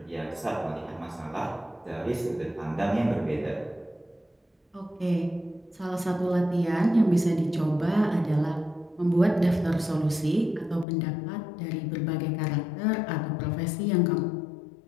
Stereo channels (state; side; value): drops out; right; at 10.9 s